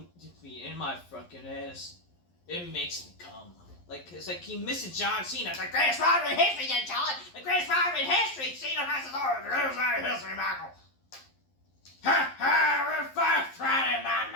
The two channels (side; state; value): right; late; 11 ms